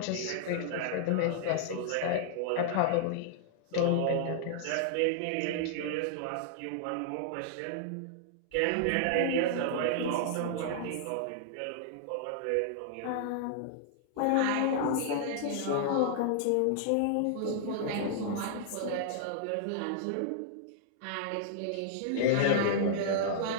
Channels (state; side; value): different; both; correlation -0.01